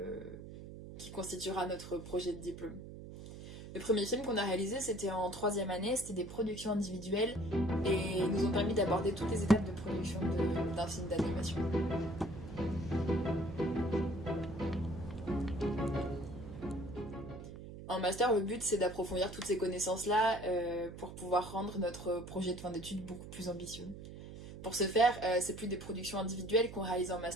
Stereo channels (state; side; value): noise; right; hum, 12 dB below the sound